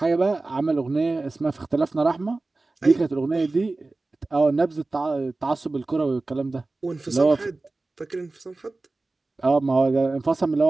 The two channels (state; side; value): quieter; left; 3.3 dB